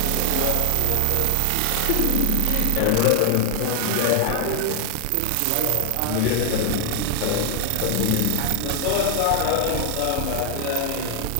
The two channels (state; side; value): different; both; correlation 0.00